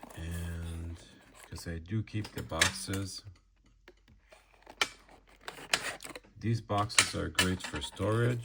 And because I do keep the boxes, these boxes are great for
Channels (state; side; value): identical; both; correlation 1.00